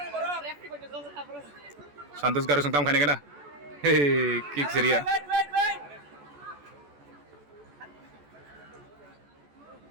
Santos garu sungtam khane kena kick seria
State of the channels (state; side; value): late; left; 14 ms